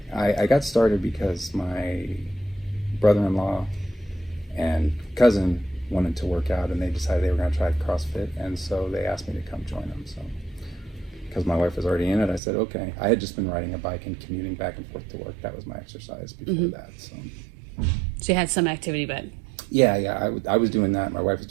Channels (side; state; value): left; drops out; at 12.4 s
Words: I got started because my brother-in-law and cousin wanted to work out, and they decided they were going to try CrossFit, and so they asked me to come join them. So because my wife was already in it, I said okay. I had just been riding a bike and commuting back and forth to work. That was my exercise before that. So you had some activity, but yeah, I was doing that. My wife was